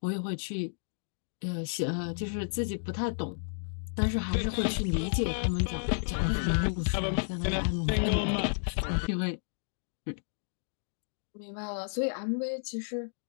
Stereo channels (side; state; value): right; silent; digital silence